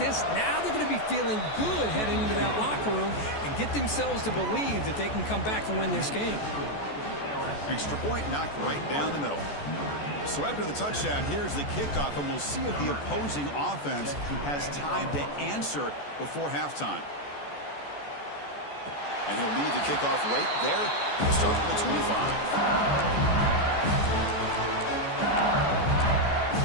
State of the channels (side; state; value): right; late; 14 ms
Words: now they're going to be feeling good heading into that locker room and get themselves to believe that they can come back and win this game. Extra point knocked right down the middle. So after the touchdown, here's the kickoff, and we'll see if the opposing offense has time to answer before halftime. And he'll lead the kickoff right there. We'll start from the 25.